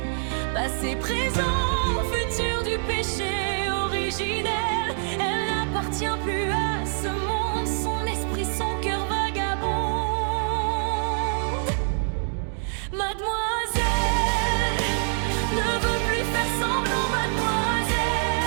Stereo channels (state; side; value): silent; left; digital silence